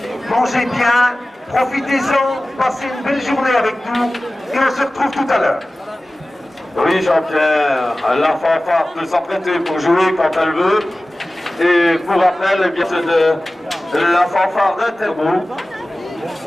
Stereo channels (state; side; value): normal; both; correlation 0.97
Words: Mangez bien, profitez-en, passez une belle journée avec nous, et on se retrouve tout à l'heure. Oui, Jean-Pierre, la fanfare peut s'apprêter pour jouer quand elle veut. Et pour rappel, eh bien, c'est de la fanfare d'Interbo.